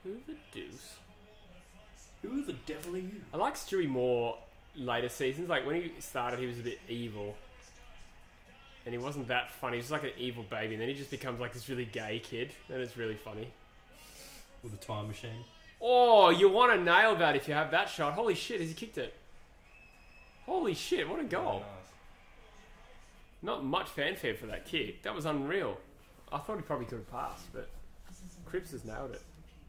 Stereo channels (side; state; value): both; identical; correlation 1.00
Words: Who the deuce? Who the devil are you? I like Stewie more later seasons. Like when he started, he was a bit evil, and he wasn't that funny. He was like an evil baby, and then he just becomes like this really gay kid, and it's really funny. With a time machine. Oh, you want to nail that if you have that shot. Holy shit, has he kicked it? Holy shit, what a goal. Nice. Not much fanfare for that kick. That was unreal. I thought he probably could have passed, but Cripps has nailed it.